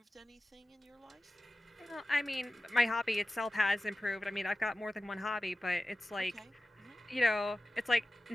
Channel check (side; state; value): both; normal; correlation 0.95